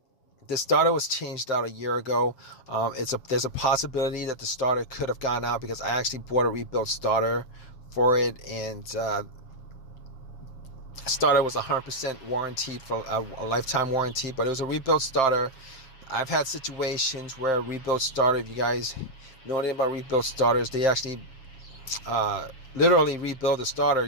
the starter was changed out a year ago. There's a possibility that the starter could have gone out, because I actually bought a rebuilt starter for it, and starter was 100% warranted for a lifetime warranty, but it was a rebuilt starter. I've had situations where a rebuilt starter, if you guys know anything about rebuilt starters, they actually literally rebuild the starter.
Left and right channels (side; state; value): right; late; 7.6 ms